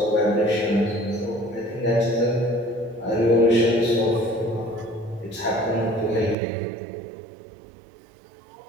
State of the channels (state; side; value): drops out; left; at 6.4 s